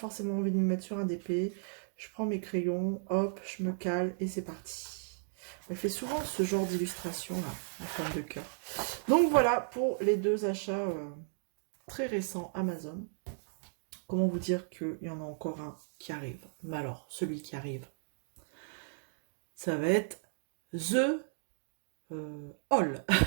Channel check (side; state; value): left; silent; digital silence